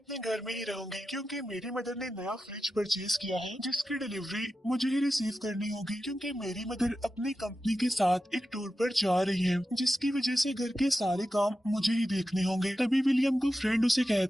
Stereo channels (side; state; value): both; normal; correlation 0.91